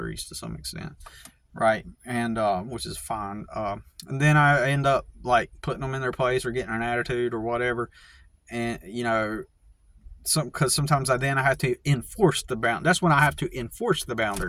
to some extent, right? And which is fine. And then I end up like putting them in their place or getting an attitude or whatever, and because sometimes I have to enforce the bound. That's when I have to enforce the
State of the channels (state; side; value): identical; both; correlation 1.00